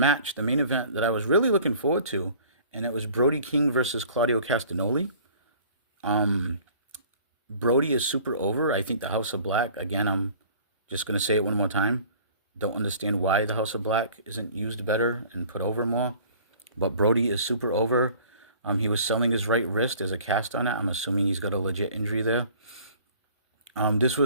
the main event that I was really looking forward to, and it was Brody King versus Claudio Castagnoli. Brody is super over. I think the House of Black, again, I'm just going to say it one more time. Don't understand why the House of Black isn't used better and put over more. But Brody is super over. He was selling his right wrist as a cast on it. I'm assuming he's got a legit injury there. This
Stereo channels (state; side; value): inverted; both; correlation -0.50